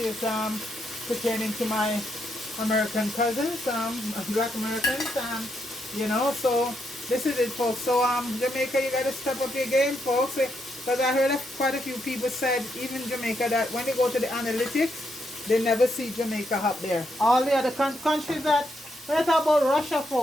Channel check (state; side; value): normal; both; correlation 0.79